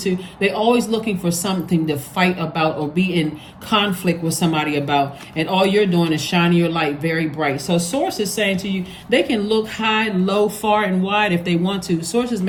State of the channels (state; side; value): identical; both; correlation 1.00